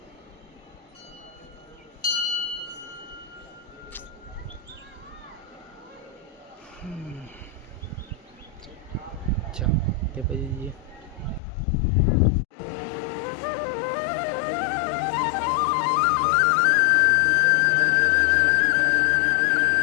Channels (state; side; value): drops out; right; at 11.4 s